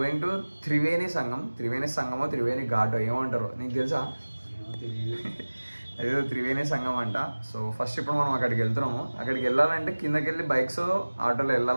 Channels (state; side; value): inverted; both; correlation -1.00